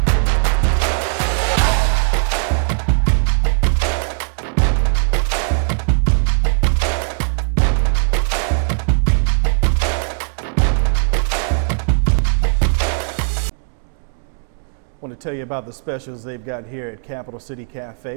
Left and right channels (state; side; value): silent; left; digital silence